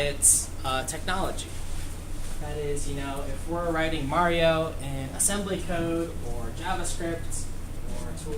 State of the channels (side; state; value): both; identical; correlation 1.00